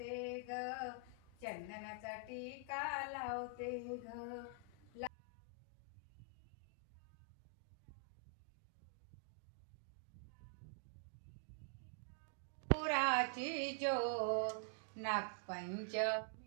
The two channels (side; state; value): left; drops out; at 5.1 s